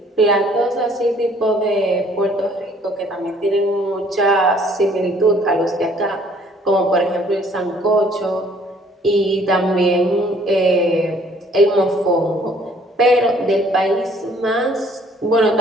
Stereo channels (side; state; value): both; normal; correlation 0.59